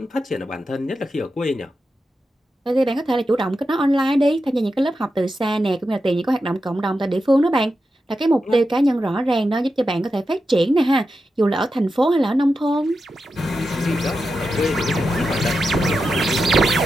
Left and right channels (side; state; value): both; normal; correlation 0.89